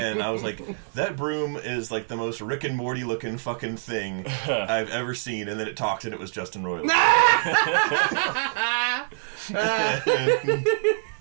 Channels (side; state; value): left; silent; digital silence